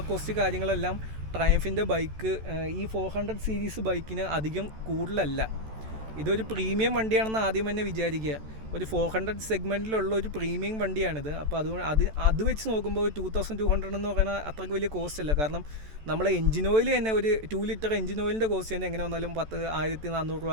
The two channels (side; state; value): left; late; 14 ms